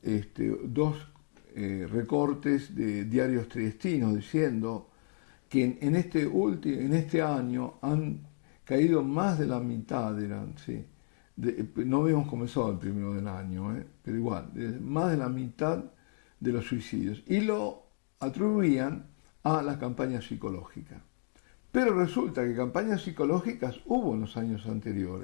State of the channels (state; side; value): silent; right; 56 dB below the other